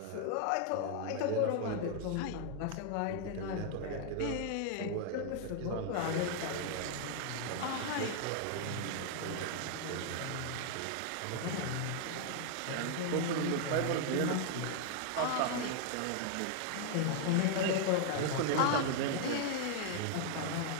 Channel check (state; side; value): different; both; correlation 0.00